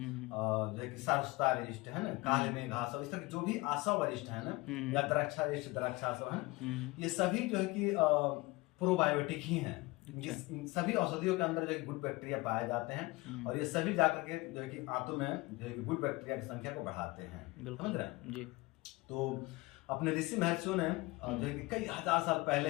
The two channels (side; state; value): right; quieter; 22.5 dB